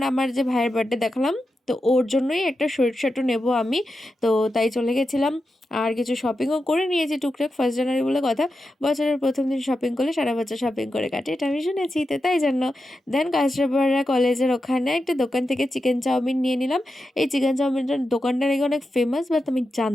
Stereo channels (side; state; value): both; normal; correlation 0.89